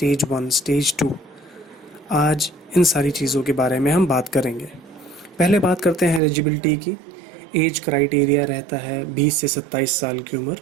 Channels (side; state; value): left; drops out; at 6.2 s